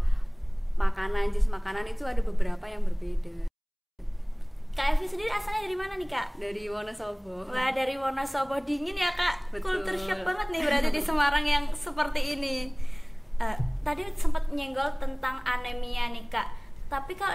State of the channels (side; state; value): both; identical; correlation 1.00